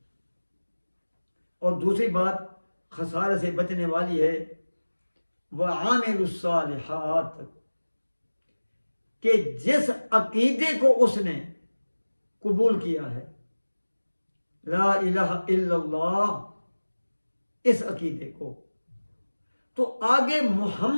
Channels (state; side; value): inverted; both; correlation -1.00